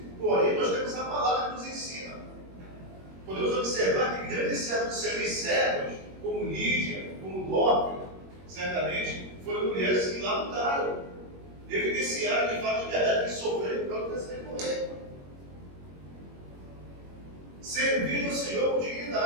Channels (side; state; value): left; late; 21 ms